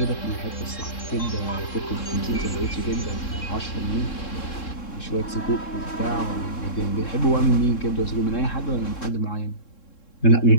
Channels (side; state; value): right; late; 3.7 ms